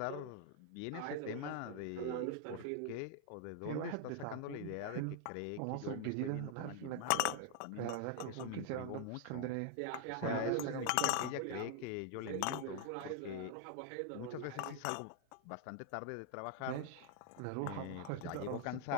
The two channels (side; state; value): both; different; correlation 0.00